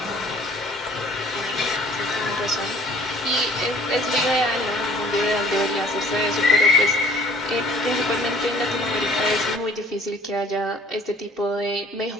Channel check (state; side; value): normal; both; correlation 0.54